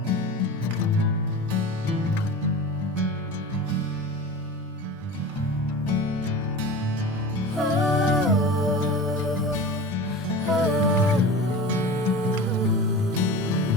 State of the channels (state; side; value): normal; both; correlation 0.33